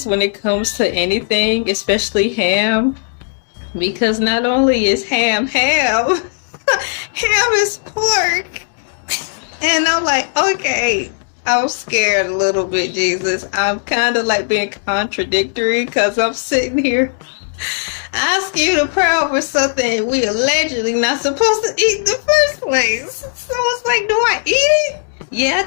when it comes to anything, especially ham, because not only is ham ham is pork. And I'm like, okay, I'm scared a little bit, Jesus. I'm kind of like being contradictory because I'm sitting here asking you to pray over something we allegedly not supposed to eat in the first place. So it's like, do I eat it? Yeah,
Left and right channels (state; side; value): silent; right; digital silence